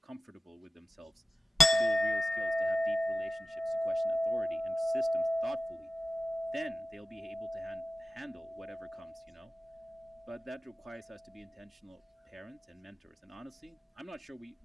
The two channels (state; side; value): normal; both; correlation 0.93